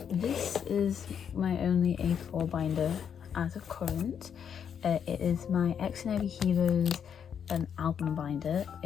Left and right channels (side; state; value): right; quieter; 7.9 dB